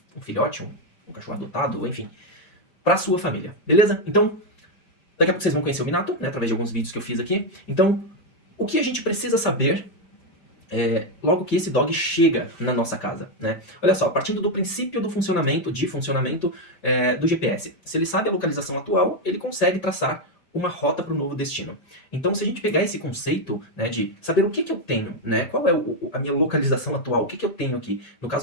filhote, um cachorro adotado, enfim, para sua família, beleza? Então, daqui a pouco vocês vão conhecer o Minato, através de alguns vídeos que eu fiz aqui. Então, o que a gente precisa saber logo que esse dog chega na nossa casa, Olha só, partindo do princípio do funcionamento do GPS. Se ele sabe a localização atual, ele consegue traçar uma rota para o novo destino. Então, se a gente pegar esse conceito de saber o que eu tenho, qual é a minha localização atual, o que eu tenho aqui, no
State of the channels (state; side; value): late; right; 5.1 ms